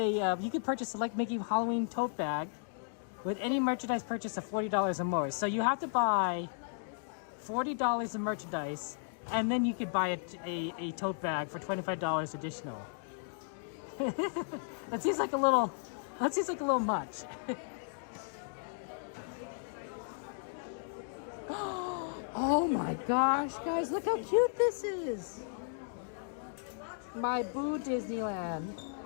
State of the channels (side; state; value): right; silent; digital silence